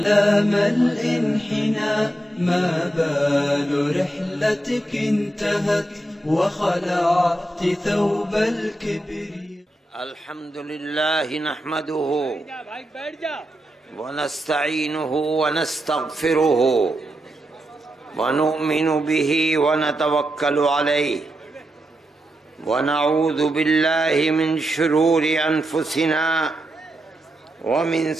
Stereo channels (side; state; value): both; normal; correlation 0.85